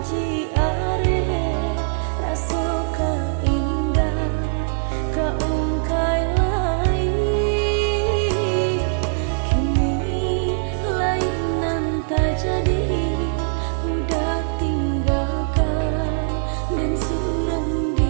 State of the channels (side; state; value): left; silent; digital silence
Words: janji are raso ka indah ka ungkai lai kini lain nan tak jadi udah tinggalkan dan surang